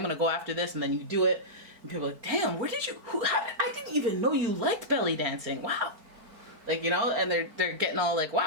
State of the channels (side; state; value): left; late; 4.4 ms